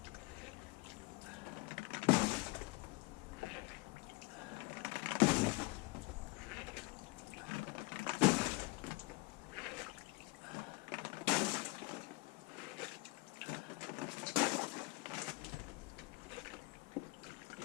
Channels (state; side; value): quieter; right; 24.2 dB